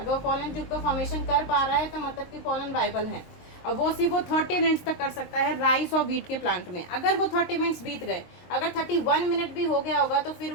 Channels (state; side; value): late; right; 23 ms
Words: वो पोलन ट्यूब का फॉर्मेशन कर पा रहा है तो मतलब कि पोलन वायबल है। और वो सिर्फ वो 30 मिनट्स तक कर सकता है राइस और वीट के प्लांट में। अगर वो 30 मिनट्स बीत गए, अगर 31 मिनट भी हो गया होगा तो फिर